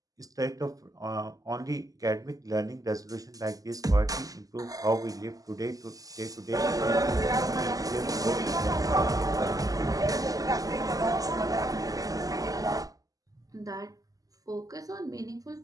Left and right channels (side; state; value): left; late; 0.17 ms